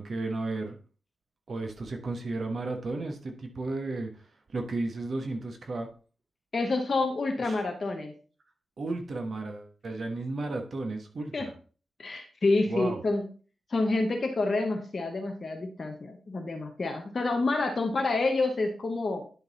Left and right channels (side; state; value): both; normal; correlation 0.91